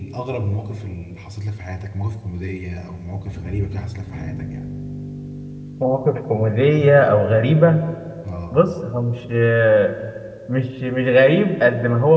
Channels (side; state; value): both; identical; correlation 1.00